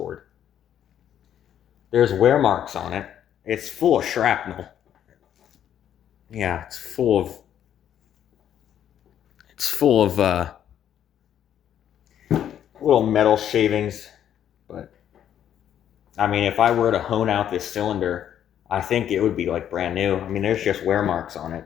There's wear marks on it. It's full of shrapnel. Yeah, it's full of little metal shavings. But I mean, if I were to hone out this cylinder, I think it would be like brand new. I mean, there's just wear marks on it,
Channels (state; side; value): quieter; right; 10.1 dB